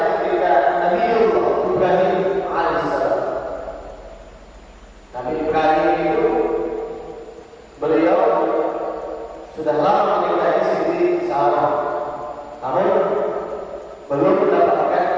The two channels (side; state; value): both; identical; correlation 1.00